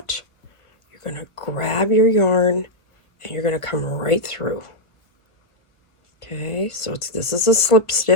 You're going to grab your yarn and you're going to come right through. Okay, so this is a slip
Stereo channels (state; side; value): late; right; 1.5 ms